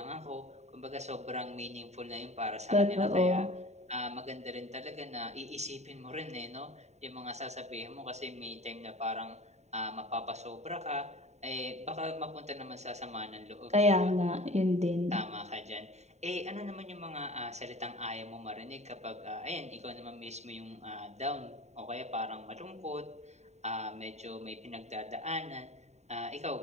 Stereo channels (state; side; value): late; left; 0.32 ms